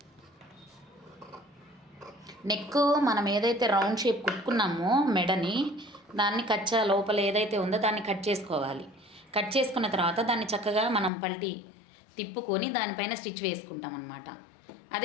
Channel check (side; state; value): right; drops out; at 11.1 s